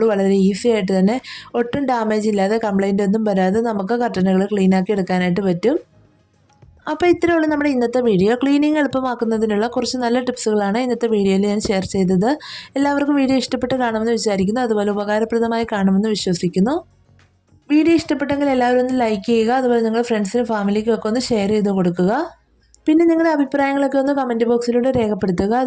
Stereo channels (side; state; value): both; identical; correlation 1.00